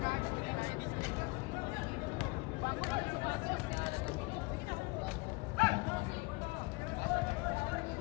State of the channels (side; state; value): right; quieter; 26.1 dB